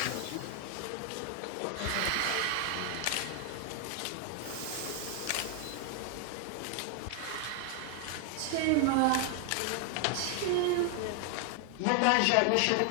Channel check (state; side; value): different; both; correlation 0.00